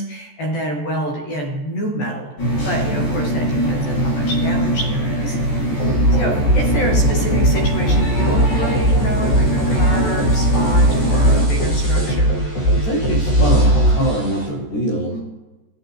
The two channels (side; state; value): right; late; 14 ms